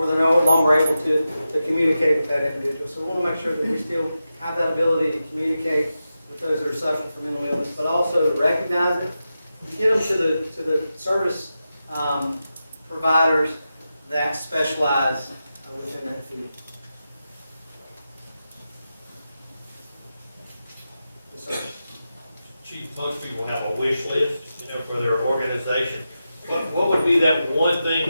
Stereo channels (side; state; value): both; inverted; correlation -0.90